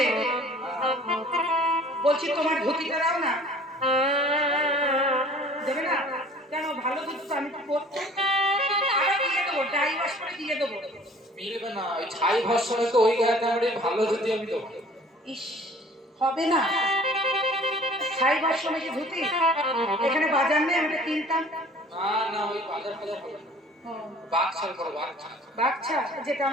বলছি তোমার ধুতিটা দাও না। দেবে না কেন? ভালো ধুতি তো, আমি তো পড়তে দিয়ে দেবো, ডাই ওয়াশ করে দিয়ে দেবো। মিলবে না, ওই ছাই ভস্মে তো ওই গায়ে আমরা ভালো ধুতি আমি দেবো। ইস, হবে না। ছাই ভাষ্য নাকি ধুতি? এখানে বাজার নেই, আমি কিনতাম। না না, ওই বাজার বাজার হবে না, বাকছাল করো, বাকছাল। বাচ্চা যেটা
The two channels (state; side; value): normal; both; correlation 0.50